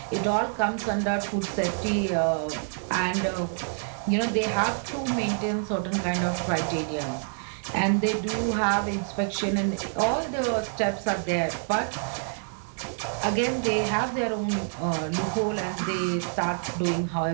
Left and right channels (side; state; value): left; silent; 60 dB below the other